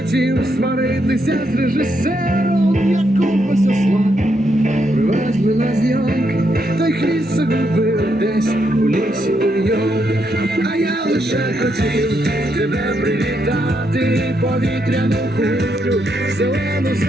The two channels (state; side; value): normal; both; correlation 0.78